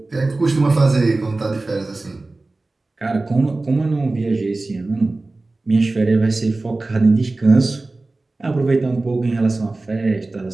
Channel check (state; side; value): quieter; left; 3.2 dB